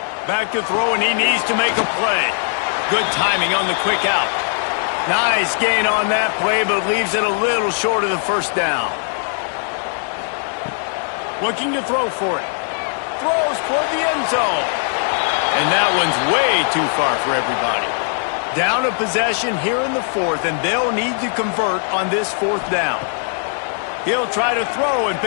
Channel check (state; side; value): silent; right; 63 dB below the other